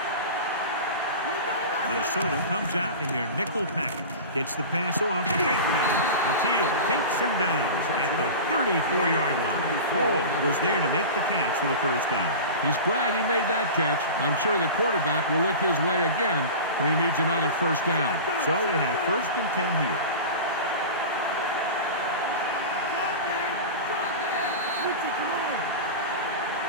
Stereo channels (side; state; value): both; inverted; correlation -0.30